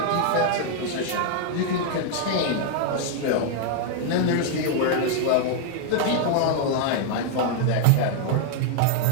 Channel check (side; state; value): both; different; correlation 0.00